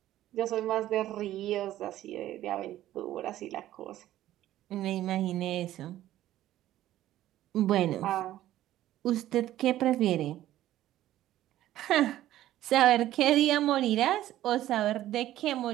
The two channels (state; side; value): quieter; left; 13.7 dB